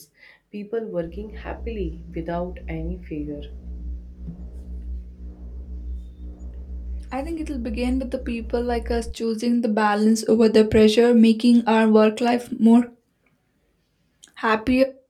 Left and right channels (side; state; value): both; identical; correlation 1.00